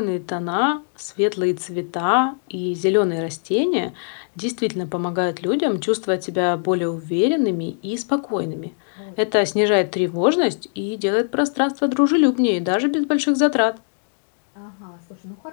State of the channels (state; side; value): silent; right; digital silence